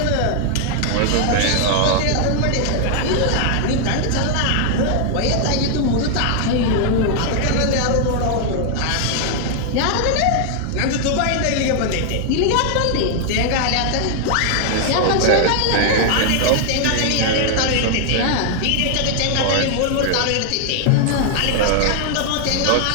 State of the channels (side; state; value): both; different; correlation 0.00